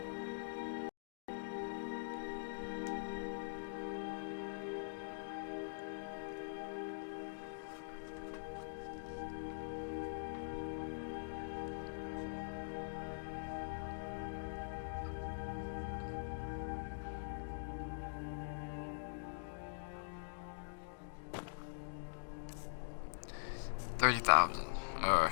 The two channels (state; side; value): silent; right; digital silence